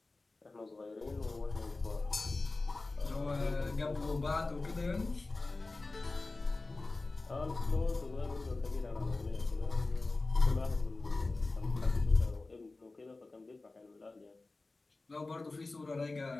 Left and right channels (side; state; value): right; quieter; 3.4 dB